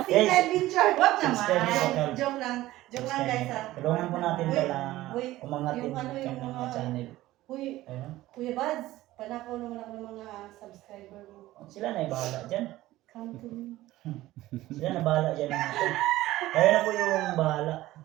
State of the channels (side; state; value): left; quieter; 16.4 dB